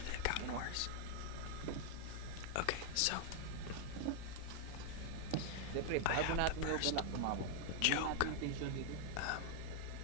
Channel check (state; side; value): different; both; correlation 0.00